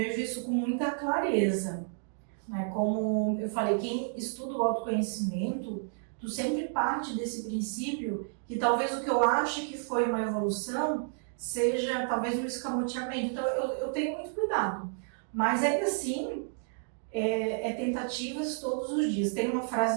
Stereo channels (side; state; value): left; silent; digital silence